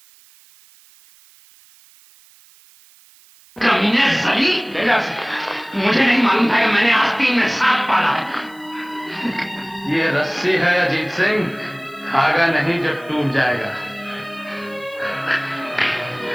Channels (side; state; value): right; noise; hiss, 27 dB below the sound